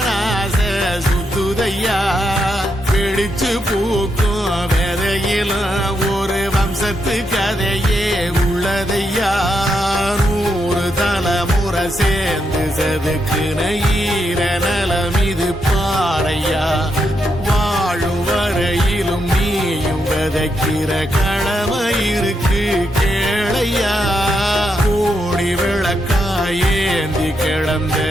சுத்துதையா பிடிச்சு பூக்கும் விதையிலும் ஒரு வம்சத்து கதையே உள்ளதையா 100 தலைமுறை சேர்ந்து செதுக்குன ஈர நலம் இது பாறையா வாழும் வரையிலும் நீயும் விதைக்கிற கடமை இருக்கு கேளையா கோடி விளக்காயேந்தி கிடந்த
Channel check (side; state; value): both; normal; correlation 0.81